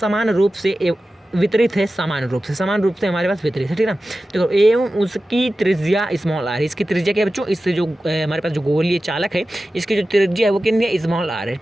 रूप से वितरित है, समान रूप से हमारे पास वितरित है, ठीक है ना। देखो एवं उसकी त्रिज्या स्मॉल r, इसकी त्रिज्या क्या है बच्चों? इससे जो हमारे पास जो गोलीय चालक है इसकी जो त्रिज्या है वो कितनी है? स्मॉल r है,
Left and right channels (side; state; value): both; normal; correlation 0.94